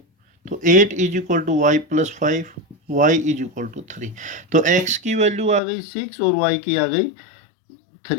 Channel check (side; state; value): right; drops out; at 5.6 s